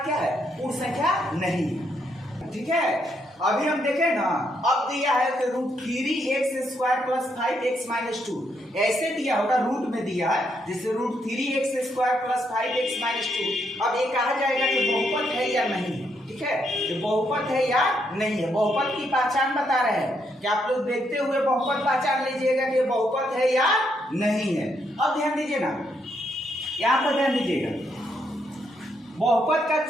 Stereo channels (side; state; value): both; normal; correlation 0.76